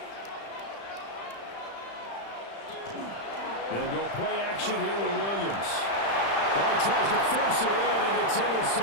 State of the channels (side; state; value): right; late; 35 ms